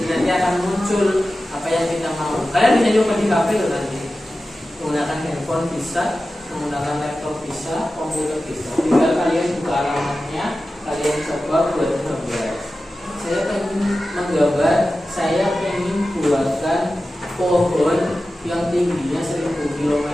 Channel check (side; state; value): both; normal; correlation 0.94